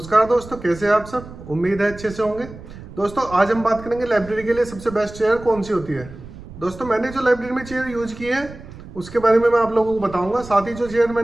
दोस्तों, कैसे हैं आप सब। उम्मीद है अच्छे से होंगे। दोस्तों आज हम बात करेंगे लाइब्रेरी के लिए सबसे बेस्ट चेयर कौन सी होती है। दोस्तों मैंने जो लाइब्रेरी में चेयर यूज की है उसके बारे में मैं आप लोगों को बताऊंगा। साथ ही जो चेयर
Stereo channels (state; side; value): noise; right; rumble, 15 dB below the sound